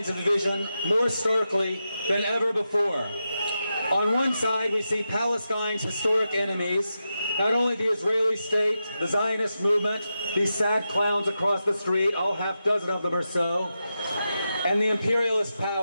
of division more starkly than ever before. On one side, we see Palestine's historic enemies, not only the Israeli state, the Zionist movement, these sad clowns across the street, all half dozen of them or so, and the imperialist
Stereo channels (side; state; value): both; inverted; correlation -0.89